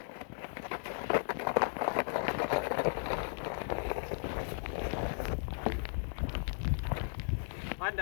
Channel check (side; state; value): right; silent; digital silence